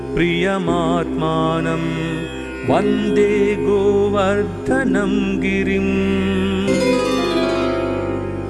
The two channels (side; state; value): both; identical; correlation 1.00